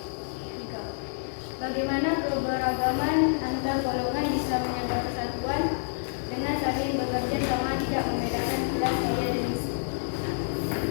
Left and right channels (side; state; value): right; silent; digital silence